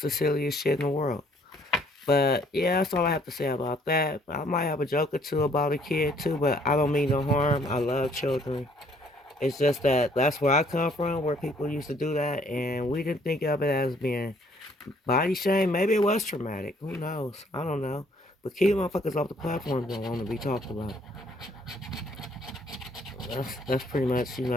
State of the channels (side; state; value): both; normal; correlation 0.62